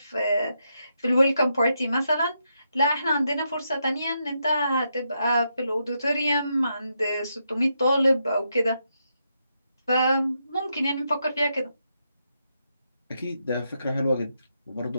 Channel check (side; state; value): both; inverted; correlation -0.82